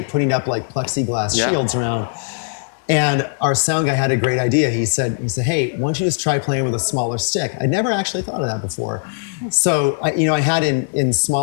putting up like plexiglass Yeah. shields around. And our sound guy had a great idea. He said, hey, why don't you just try playing with a smaller stick? I never actually thought of that before. So I had in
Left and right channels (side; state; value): right; silent; 66 dB below the other